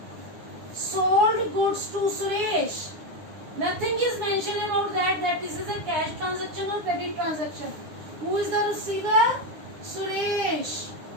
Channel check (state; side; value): late; left; 9.7 ms